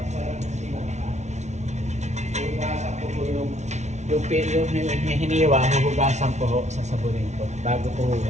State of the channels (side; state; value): left; late; 0.33 ms